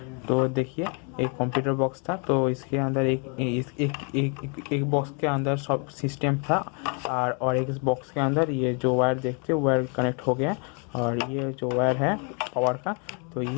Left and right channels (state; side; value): quieter; right; 37.0 dB